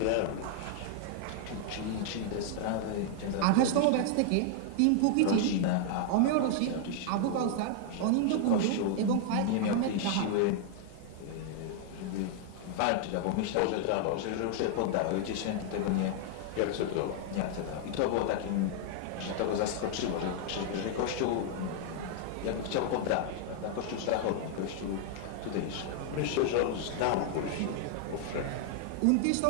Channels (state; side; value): different; both; correlation 0.00